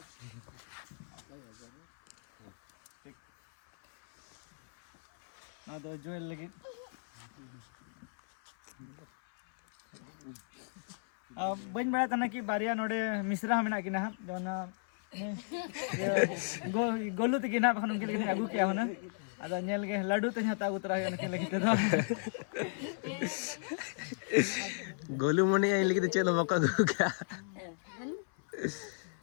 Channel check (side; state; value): right; silent; 55 dB below the other